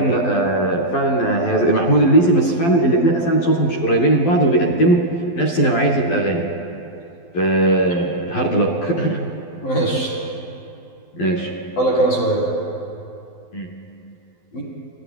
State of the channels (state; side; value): late; right; 12 ms